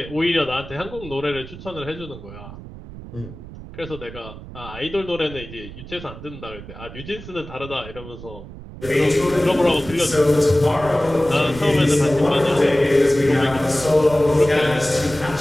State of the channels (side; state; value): right; noise; rumble, 14 dB below the sound